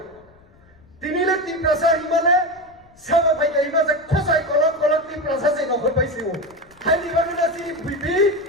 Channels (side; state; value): left; noise; rumble, 29 dB below the sound